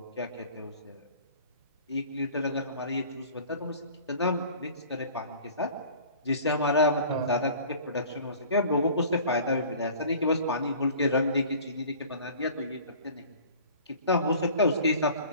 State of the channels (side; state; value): both; inverted; correlation -0.46